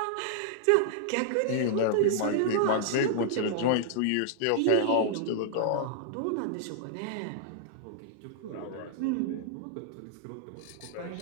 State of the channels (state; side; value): different; both; correlation -0.01